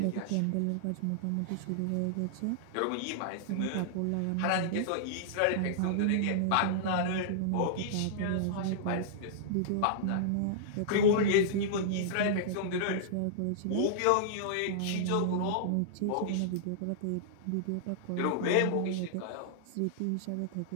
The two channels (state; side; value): different; both; correlation -0.01